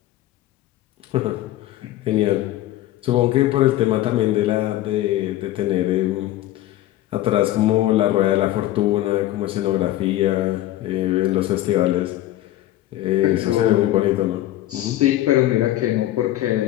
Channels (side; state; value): right; quieter; 14.6 dB